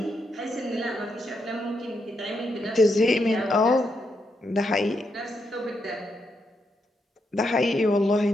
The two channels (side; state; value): both; normal; correlation 0.81